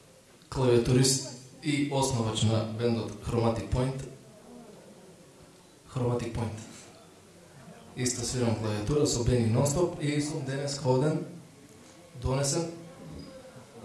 клавиатурист и основач на бендот Chromatic Point. Chromatic Point. Исто свирам клавиатура со Бени Нонстоп и сум денес ходен, донесен,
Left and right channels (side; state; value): both; identical; correlation 1.00